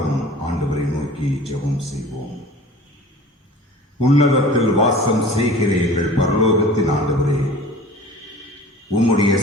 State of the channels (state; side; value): normal; both; correlation 0.42